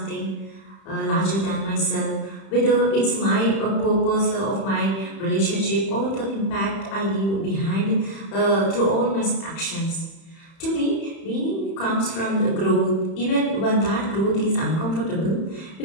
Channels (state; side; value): late; right; 31 ms